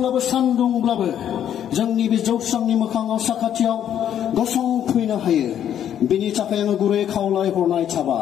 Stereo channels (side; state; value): right; quieter; 10.0 dB